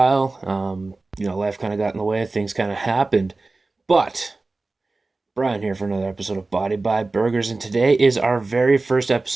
Life kind of got in the way, things kind of happened. But Brian here for another episode of Body by Burgers, and today is our very first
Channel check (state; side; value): quieter; left; 3.4 dB